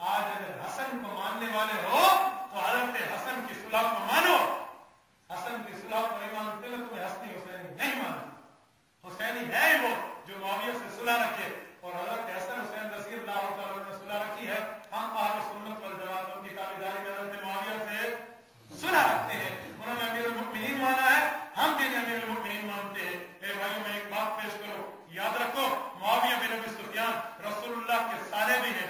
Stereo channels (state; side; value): identical; both; correlation 1.00